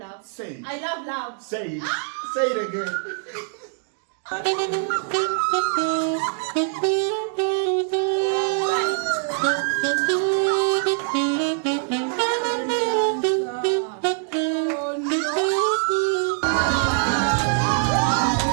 Say it. I love love. Say it. Say it again.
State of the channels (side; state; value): left; silent; 63 dB below the other